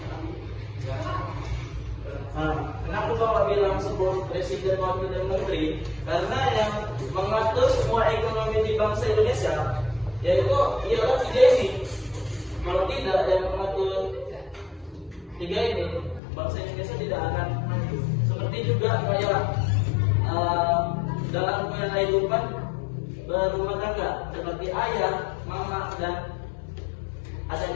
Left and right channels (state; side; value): drops out; right; at 16.2 s